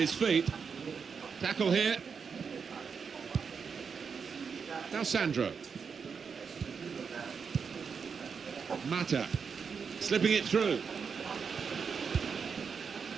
feet. Tackle here. Now Sandro. Mata slipping it through.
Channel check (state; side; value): quieter; left; 6.0 dB